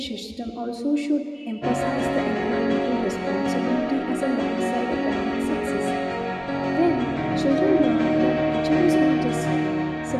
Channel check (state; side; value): identical; both; correlation 1.00